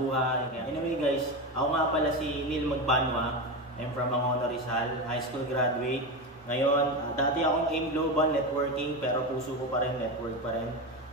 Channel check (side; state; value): both; normal; correlation 0.18